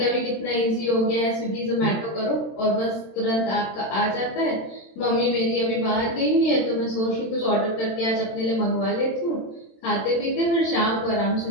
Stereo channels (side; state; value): right; late; 27 ms